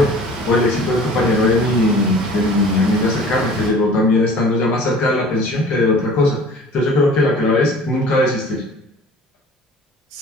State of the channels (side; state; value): both; normal; correlation 0.46